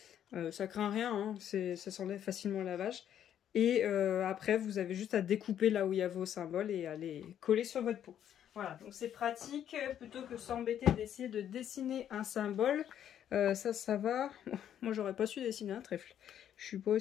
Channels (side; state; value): right; quieter; 10.0 dB